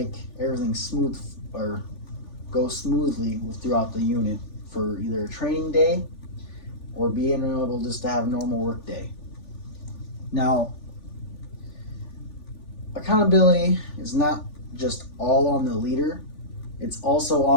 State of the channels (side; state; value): right; late; 3.4 ms